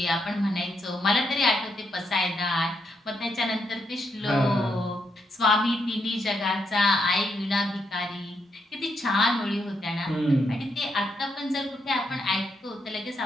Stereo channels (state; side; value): normal; both; correlation 0.79